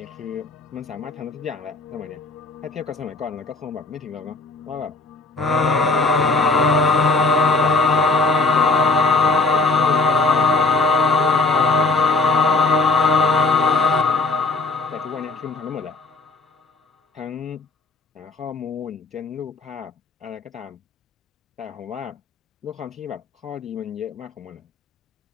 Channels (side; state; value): right; quieter; 3.8 dB